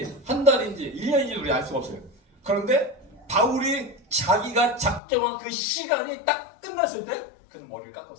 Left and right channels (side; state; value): right; drops out; at 5.0 s